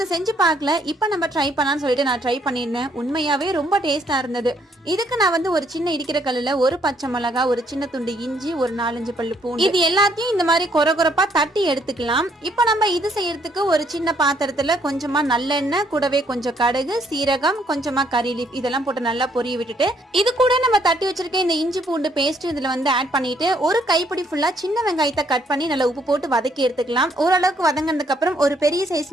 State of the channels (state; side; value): normal; both; correlation 0.68